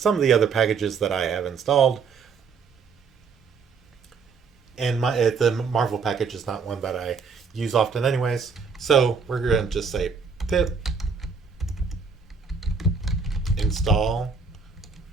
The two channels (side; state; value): left; quieter; 5.4 dB